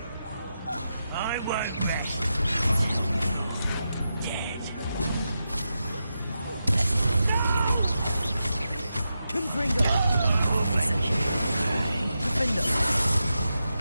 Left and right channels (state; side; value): inverted; both; correlation -0.88